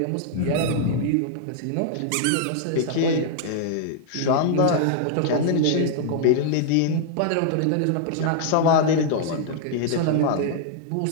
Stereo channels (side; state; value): both; different; correlation -0.01